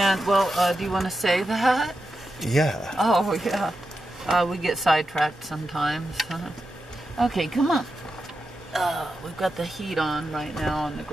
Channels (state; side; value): normal; both; correlation 0.89